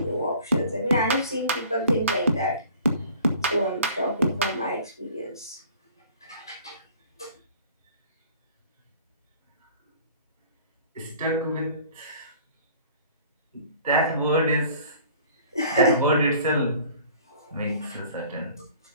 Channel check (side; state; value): both; inverted; correlation -0.49